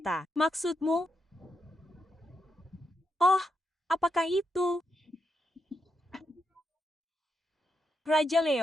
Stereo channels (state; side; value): normal; both; correlation 0.82